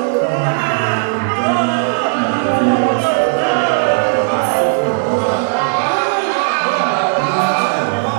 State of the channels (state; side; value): silent; left; digital silence